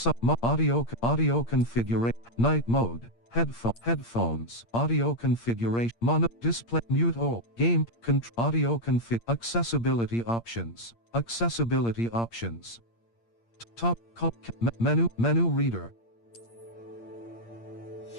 audio configuration. Night mode. Headphones. Audio configuration. Mono display. Mute all. Game audio config. Accessibility options. Accessibility options. Top menu reader.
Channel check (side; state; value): right; late; 8.7 ms